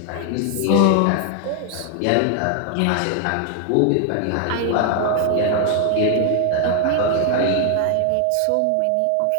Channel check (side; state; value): both; different; correlation 0.00